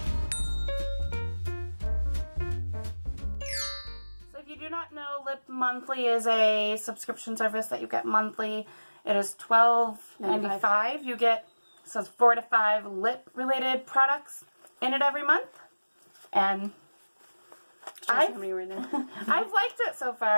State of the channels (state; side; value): inverted; both; correlation -1.00